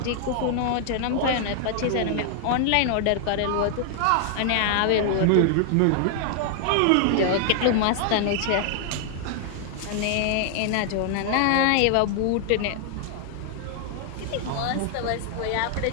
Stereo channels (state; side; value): different; both; correlation 0.00